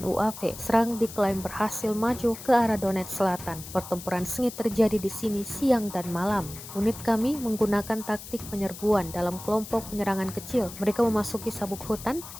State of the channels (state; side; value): noise; left; hiss, 13 dB below the sound